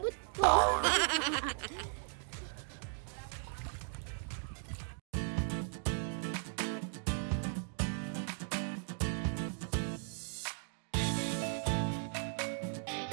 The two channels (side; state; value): left; silent; 53 dB below the other